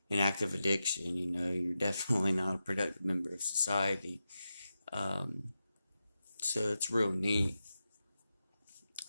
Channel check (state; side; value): inverted; both; correlation -0.90